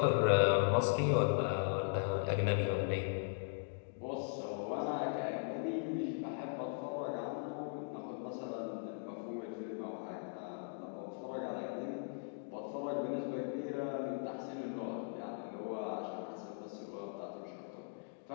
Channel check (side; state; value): right; silent; digital silence